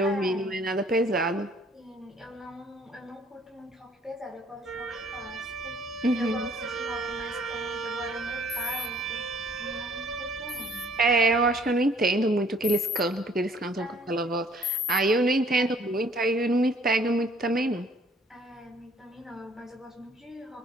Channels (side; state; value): both; normal; correlation 0.59